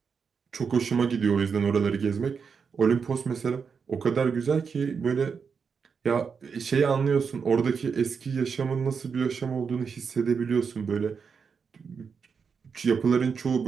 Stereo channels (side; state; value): left; quieter; 5.9 dB